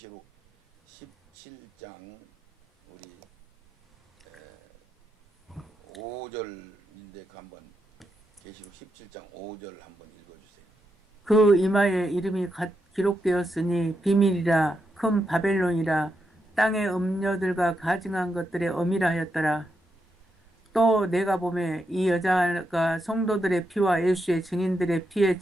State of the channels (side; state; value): both; normal; correlation 0.84